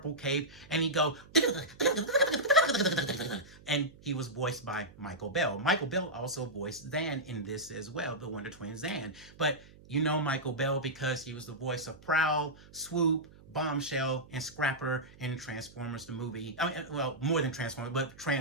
cape, and he'd go, and he was voiced by Michael Bell. Michael Bell also voiced Zan in this as well, the Wonder Twin Zan. But you know Michael Bell because he was the voice of Prowl, Swoop, Bombshell, and Scrapper in Transformers the movie. I mean, well, more than Transformers, but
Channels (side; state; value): right; noise; hum, 22 dB below the sound